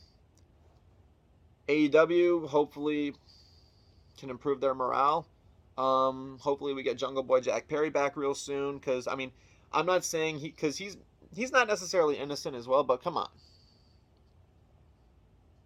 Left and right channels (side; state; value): both; identical; correlation 1.00